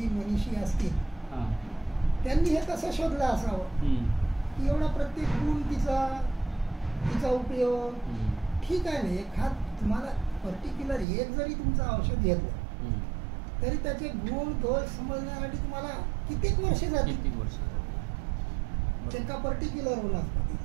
मनीषी असतील त्यांनी हे कसं शोधलं असावं की एवढा प्रत्येक गुण तिचा उपयोग. ठीक आहे ना, एखाद तुम्हाला पर्टिक्युलर एक जरी तुमचं औषध घेतलं तरी त्याचे गुण दोष समजण्यासाठी तुम्हाला कित्येक वर्ष जातील. एका पर्टिक्युलर वनस्पती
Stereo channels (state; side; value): drops out; left; at 11.1 s